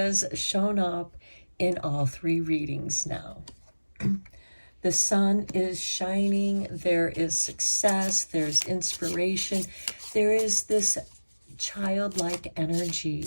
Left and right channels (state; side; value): inverted; both; correlation -1.00